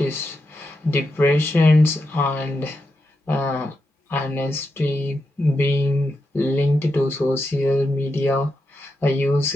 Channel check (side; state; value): both; normal; correlation 0.86